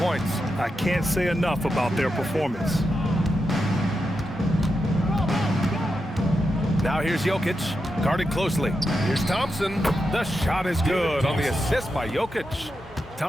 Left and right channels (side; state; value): both; normal; correlation 0.87